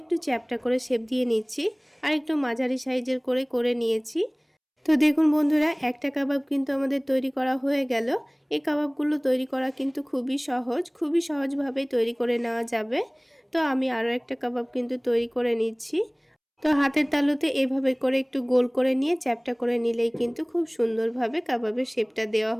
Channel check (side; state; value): both; identical; correlation 1.00